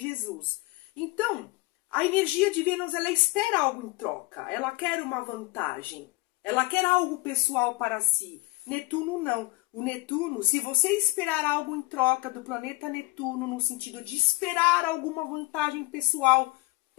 Então, a energia de Vênus, ela espera algo em troca, ela quer uma vantagem, ela quer algo pessoal para si. Netuno não. O Netuno, se você esperar algo em troca do planeta Netuno, no sentido de esperar alguma vantagem pessoal,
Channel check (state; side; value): quieter; right; 23.4 dB